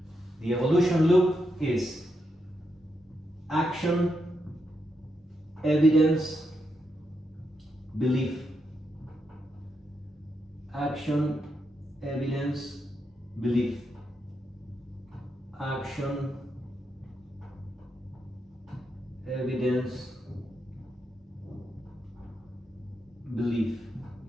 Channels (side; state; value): both; normal; correlation 0.83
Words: The evolution loop is Action, evidence, belief. Action, evidence, belief. Action, evidence, belief.